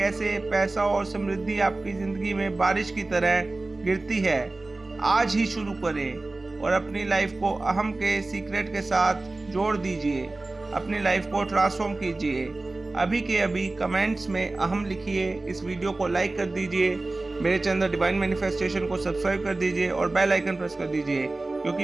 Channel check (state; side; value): quieter; left; 3.1 dB